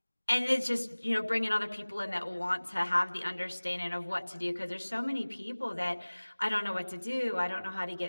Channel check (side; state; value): both; inverted; correlation -1.00